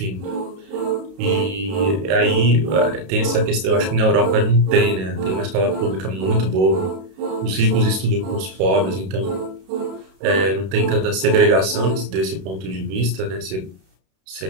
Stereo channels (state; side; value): late; left; 32 ms